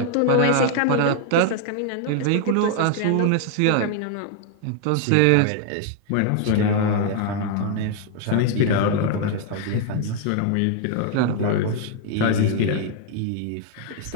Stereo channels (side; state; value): both; different; correlation 0.00